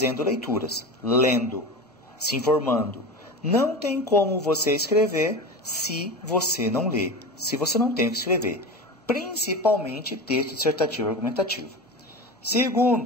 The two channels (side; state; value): both; normal; correlation 0.28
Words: leituras, lendo, se informando. Não tem como você escrever se você não lê, se você não tem o que escrever, principalmente texto dissertativo argumentativo.